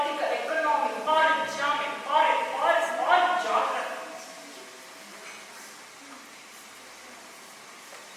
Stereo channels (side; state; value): both; identical; correlation 1.00